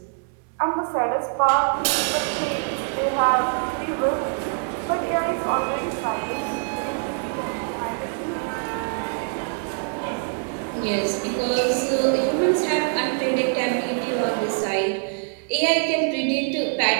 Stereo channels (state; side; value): silent; left; 55 dB below the other